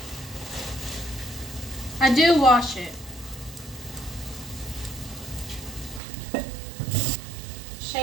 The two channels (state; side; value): drops out; left; at 6.0 s